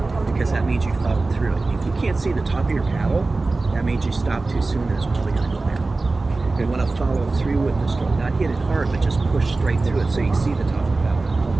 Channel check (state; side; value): quieter; left; 3.5 dB